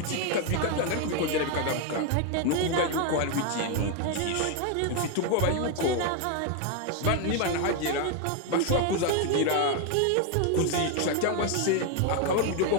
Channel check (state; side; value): different; both; correlation 0.01